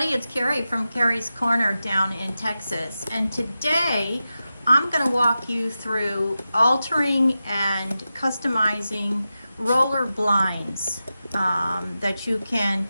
it's Carrie from Carrie's Corner down in Texas, and today I'm going to walk you through altering and customizing roller blinds that you can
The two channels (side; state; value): both; inverted; correlation -0.92